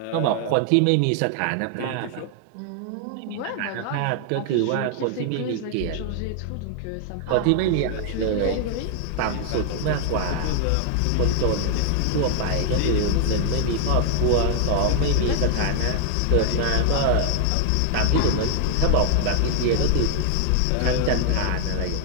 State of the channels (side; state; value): both; different; correlation 0.00